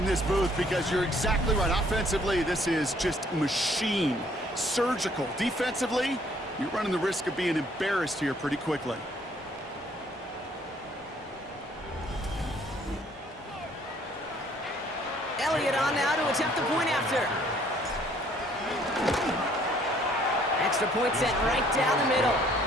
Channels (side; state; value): both; normal; correlation 0.62